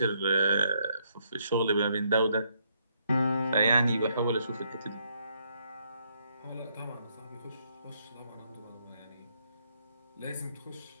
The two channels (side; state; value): both; inverted; correlation -0.73